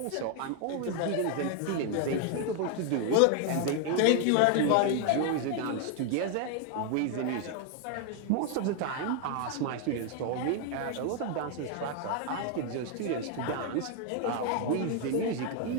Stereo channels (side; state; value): both; different; correlation 0.01